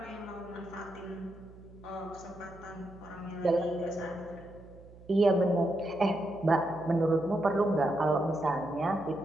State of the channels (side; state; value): right; noise; hum, 20 dB below the sound